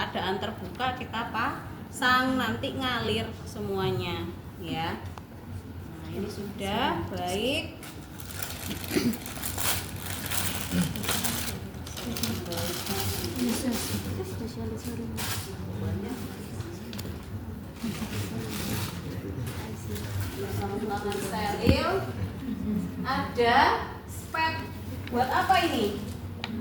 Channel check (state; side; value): identical; both; correlation 1.00